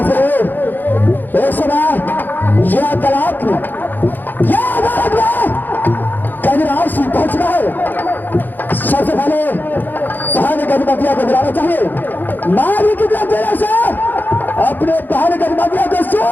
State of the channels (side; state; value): right; late; 0.089 ms